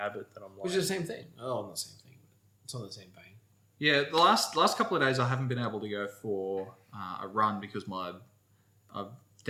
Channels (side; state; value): both; identical; correlation 1.00